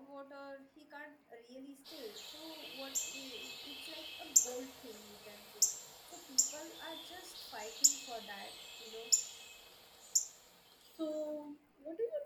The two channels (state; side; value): identical; both; correlation 1.00